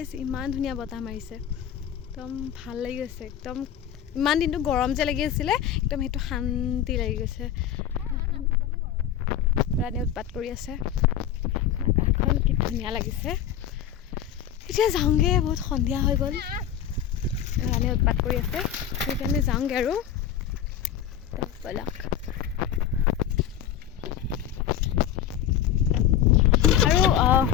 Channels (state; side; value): quieter; right; 9.9 dB